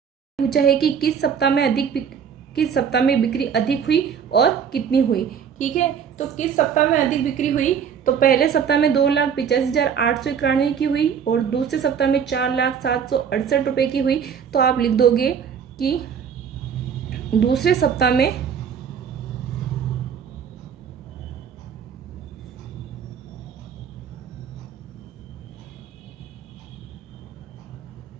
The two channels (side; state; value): left; quieter; 7.4 dB